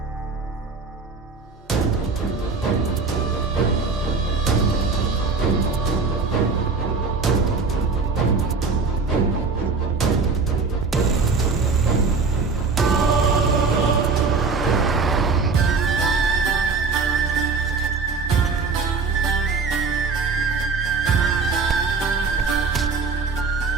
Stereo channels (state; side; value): quieter; left; 4.5 dB